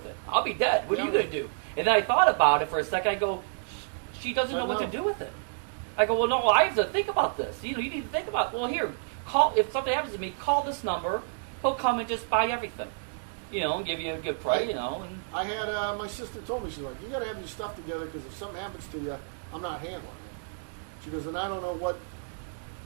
it? I'll be dead. What are you gonna do?" And then I thought about it for a second. I go, "She doesn't know what to do with it." I go, "Well, no, I have to think about this. You need to think about. Well, here, if something happens to me, call this number. He'll come and just buy everything, and give you a good price, And I had my sister told me, she's like, you got to have your stuff together because if something happens to you, I'm not handling it. She goes, and I don't know what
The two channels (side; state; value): left; silent; digital silence